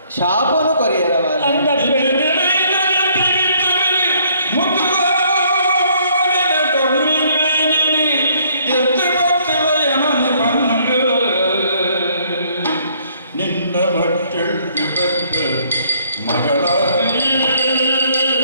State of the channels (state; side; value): inverted; both; correlation -0.64